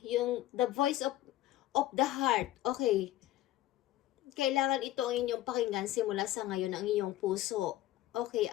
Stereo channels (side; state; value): right; quieter; 14.7 dB